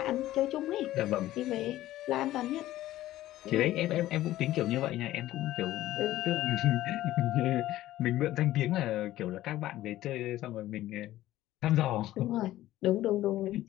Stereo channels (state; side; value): quieter; right; 14.9 dB